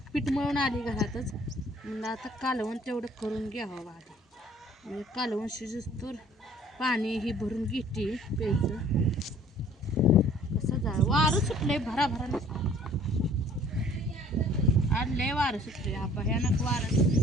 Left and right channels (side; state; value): both; normal; correlation 0.54